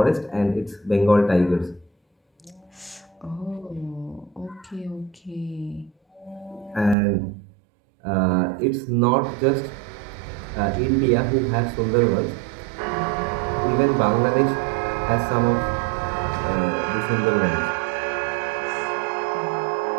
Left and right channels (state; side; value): drops out; left; at 7.0 s